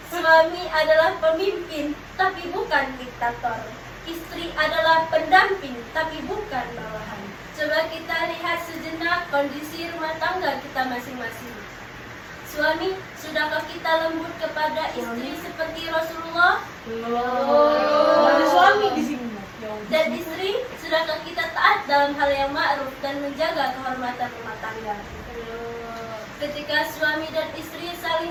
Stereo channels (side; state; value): both; identical; correlation 1.00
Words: Suami adalah pemimpin, tapi bukan diktator. Istri adalah pendamping, tapi bukan bawahan. Coba kita lihat sejenak kondisi rumah tangga kita masing-masing. Suami, sudahkah kita lembut kepada istri seperti Rasulullah? Ada suami di sini. Dan istri, sudahkah kita taat dalam hal yang ma'ruf dan menjaga kehormatan rumah tangga? Ketika suami dan istri